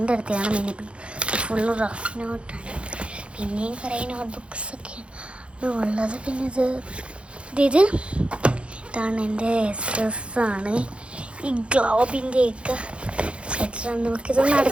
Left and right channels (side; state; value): left; late; 0.059 ms